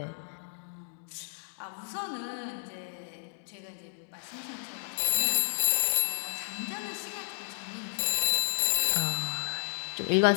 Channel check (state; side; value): silent; right; digital silence